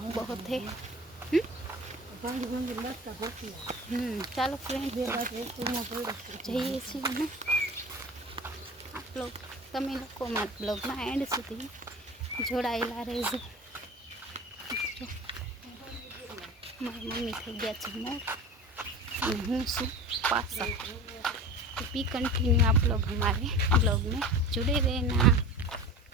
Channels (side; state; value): both; normal; correlation 0.36